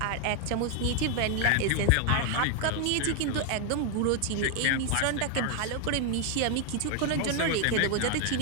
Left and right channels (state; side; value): different; both; correlation 0.00